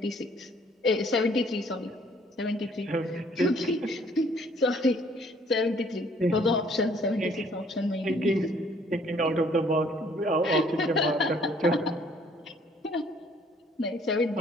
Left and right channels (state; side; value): normal; both; correlation 0.61